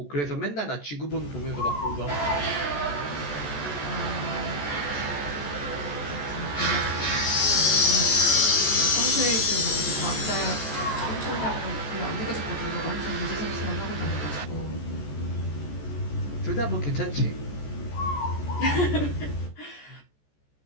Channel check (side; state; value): right; late; 14 ms